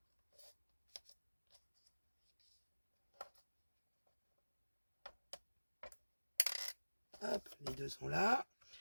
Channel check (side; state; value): both; inverted; correlation -1.00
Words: Hop, les deux sont là.